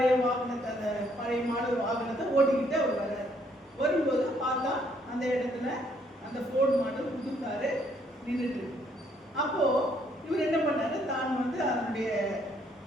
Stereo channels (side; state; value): both; normal; correlation 0.68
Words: வாகனத்தை, அந்த பழைய மாடல் வாகனத்தை ஓட்டிக்கிட்டு அவர் வர்றாரு. வரும்போது பார்த்தா அந்த இடத்துல அந்த ஃபோர்டு மாடல் புது காரு நின்றுட்டு இருக்கு. அப்போ இவர் என்ன பண்ணாரு, தான் வந்து அதனுடைய